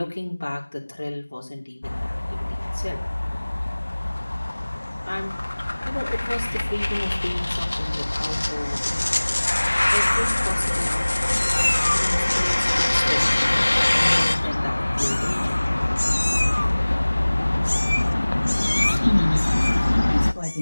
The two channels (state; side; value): inverted; both; correlation -1.00